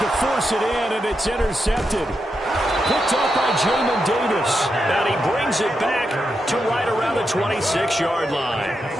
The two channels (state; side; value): normal; both; correlation 0.86